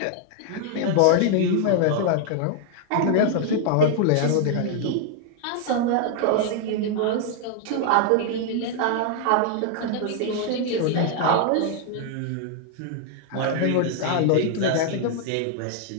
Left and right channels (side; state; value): both; different; correlation 0.00